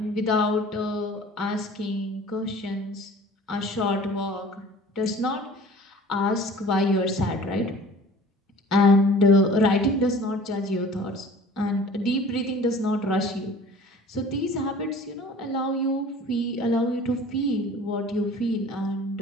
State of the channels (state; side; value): normal; both; correlation 0.46